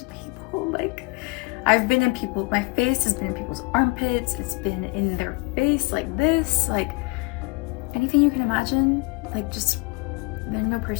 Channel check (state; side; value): quieter; right; 28.2 dB